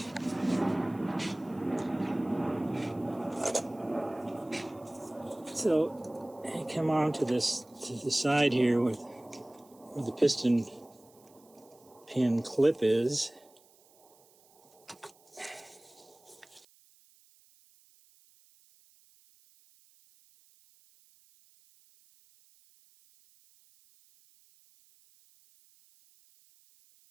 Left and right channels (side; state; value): right; noise; hiss, 29 dB below the sound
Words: So I come on to the side here where the piston pin clip is.